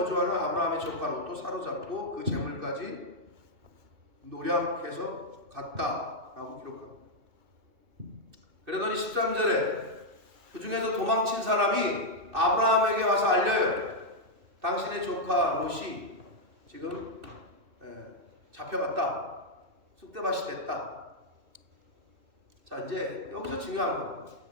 아브라함의 조카 롯도 사로잡고 그 재물까지 노략해서 갔다라고 기록합니다. 그러더니 13절에 그 중에서 도망친 사람이 아브라함에게 와서 알려요. 당신의 조카 롯이 지금 잡혀갔다. 쑥대밭이 됐다. 자, 이제 여기서 중요한 거.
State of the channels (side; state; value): left; late; 2.6 ms